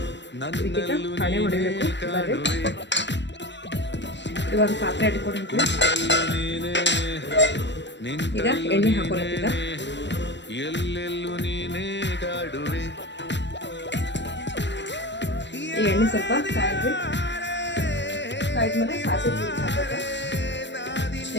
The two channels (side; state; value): right; late; 0.52 ms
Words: ಇದಕ್ಕೆ ಹಣೆ ಹೊಡಿಬೇಕು. ಬರ್ರಿ, ಇವಾಗ ಪಾತ್ರೆ ಇಟ್ಕೊಂಡಿದ್ವಿ. ಈಗ ಎಣ್ಣೆ ಹಾಕೊಳ್ಳೋದೀಗ. ಈ ಎಣ್ಣೆ ಸ್ವಲ್ಪ ಕಾಯ್ದ್ವಿ. ಕಾಯ್ದ್ಮೇಲೆ ಸಾಸಿವೆ ಜೀರಿಗೆ ಹಾಕೋದು.